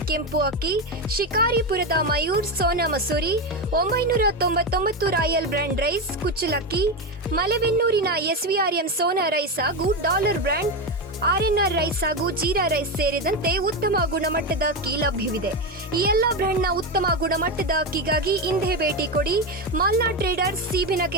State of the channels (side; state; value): both; normal; correlation 0.13